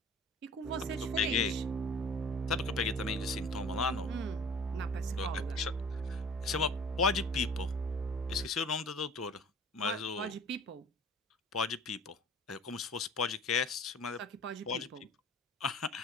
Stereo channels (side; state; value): both; normal; correlation 0.46